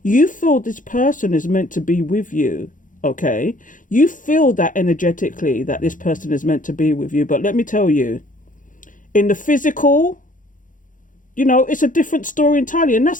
You feel this person is meant to be with you, okay? You feel that energetically that this person is meant to be with you. But let me tell you, in the physical, it's a different story entirely, and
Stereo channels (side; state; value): right; late; 0.38 ms